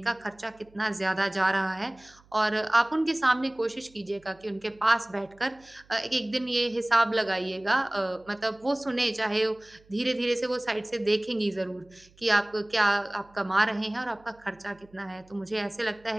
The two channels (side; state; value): right; noise; hum, 29 dB below the sound